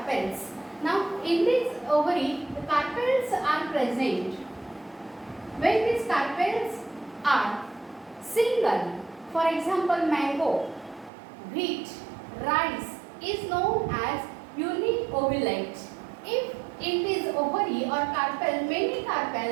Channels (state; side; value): drops out; left; at 11.1 s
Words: Now in this ovary, the carpels are present. When these carpels are single, for example mango, wheat, rice, is known as uniovulate. If it is ovary or carpel, many